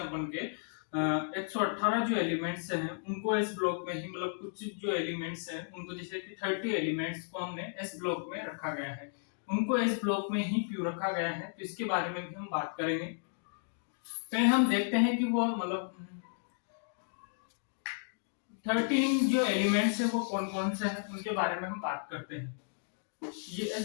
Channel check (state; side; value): silent; right; digital silence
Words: के 118 जो एलिमेंट्स हैं उनको एस ब्लॉक में ही मतलब कुछ जो एलिमेंट्स हैं उनको जैसे कि 30 एलिमेंट्स को हमने एस ब्लॉक में रखा गया है, उनको एस ब्लॉक में ही क्यों रखा गया है, तो इसके बारे में भी हम बात करेंगे। तो हम देखते हैं कि वो मतलब 13 जो एलिमेंट्स है वो कौन कौन से हैं उनके बारे में हम बात करते हैं। ये